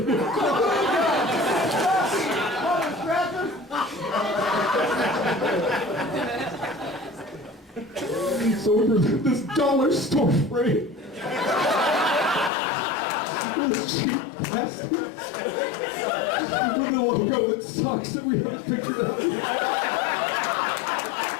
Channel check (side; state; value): right; drops out; at 12.5 s